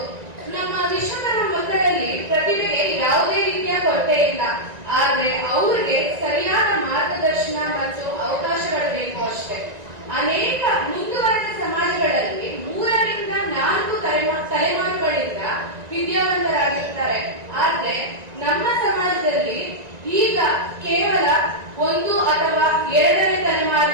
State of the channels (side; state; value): left; late; 1.9 ms